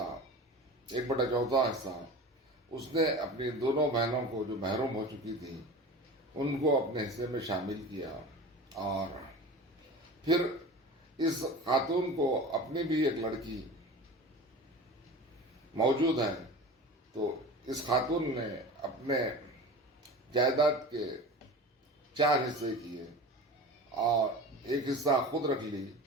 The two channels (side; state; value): both; normal; correlation 0.34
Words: 1/4 حصہ، اس نے اپنی دونوں بہنوں کو جو محروم ہو چکی تھی ان کو اپنے حصے میں شامل کیا، اور پھر اس خاتون کو اپنی بھی ایک لڑکی موجود ہے، تو اس خاتون نے اپنے جائیداد کے 4 حصے کیے اور 1 حصہ خود رکھ لی،